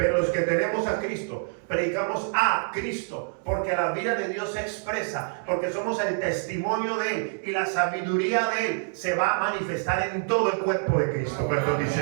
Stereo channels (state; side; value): silent; left; digital silence